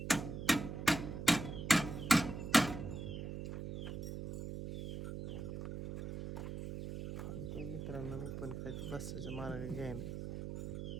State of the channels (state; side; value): noise; right; hum, 6 dB below the sound